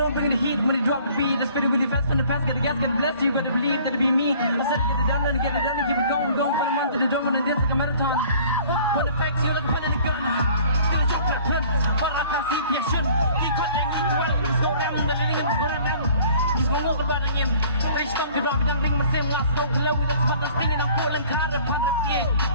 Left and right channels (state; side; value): inverted; both; correlation -0.53